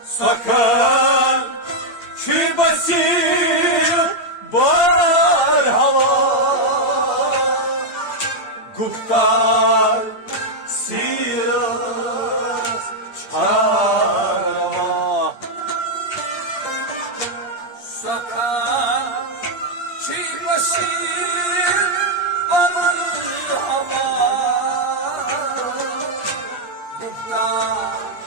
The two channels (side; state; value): right; late; 8.7 ms